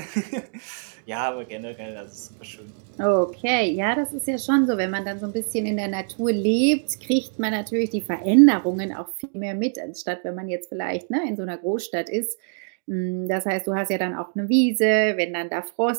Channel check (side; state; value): left; silent; 62 dB below the other